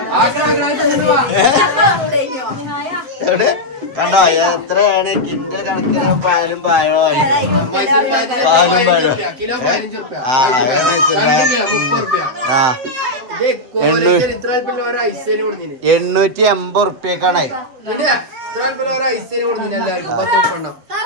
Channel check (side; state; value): left; late; 7.6 ms